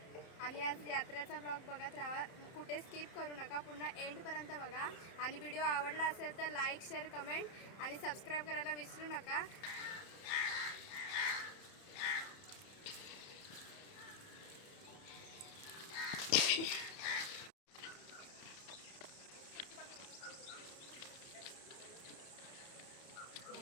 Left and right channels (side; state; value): right; late; 31 ms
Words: आणि आज यात्रेचा ब्लॉग बघत राहा, कुठे स्किप करू नका, पुन्हा एंडपर्यंत बघा. आणि व्हिडिओ आवडला असेल तर लाईक, शेअर, कमेंट आणि सबस्क्राईब करायला विसरू नका.